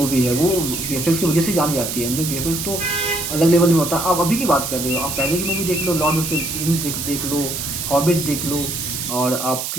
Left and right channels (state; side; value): noise; right; hiss, 4 dB below the sound